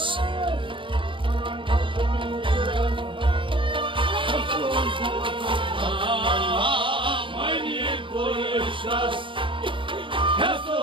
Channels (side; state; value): left; late; 0.25 ms